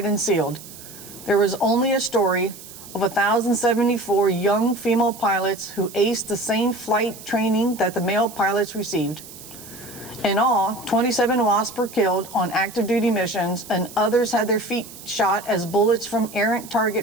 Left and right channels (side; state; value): right; noise; hiss, 16 dB below the sound